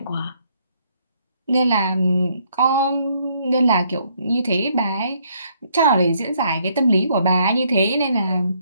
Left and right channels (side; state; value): both; inverted; correlation -0.69